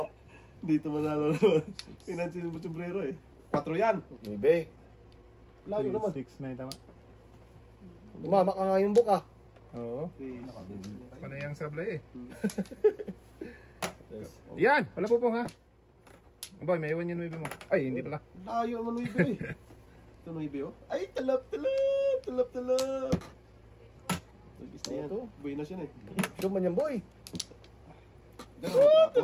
Dito manalo naman. Pinansin mo sombrero eh. 4 yan. Bebe. Layo naman. 6 na yung tama. Umama ka nga yung Bok ah. Oo. Okay. Panayang sablay eh. Yan! Wala po ha. Boy, may iwan yung 9 mo. Ay, hindi pala. Layo naman 9 eh. Ito 9 oh. Ay, talap. Tagis na yan. Ito. Buenas yun eh. Show man yan, boy. Talap.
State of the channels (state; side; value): identical; both; correlation 1.00